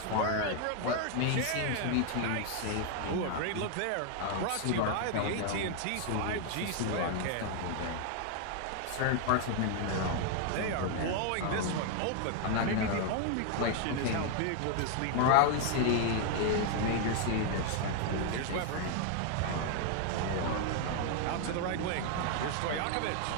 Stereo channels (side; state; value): both; different; correlation 0.00